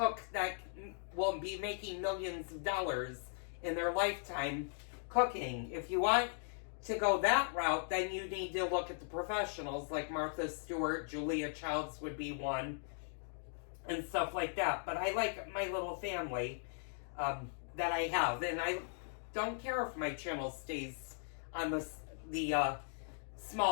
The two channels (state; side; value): silent; right; digital silence